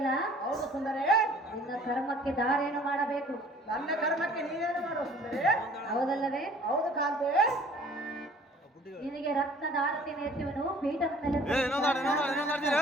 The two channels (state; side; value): normal; both; correlation 0.52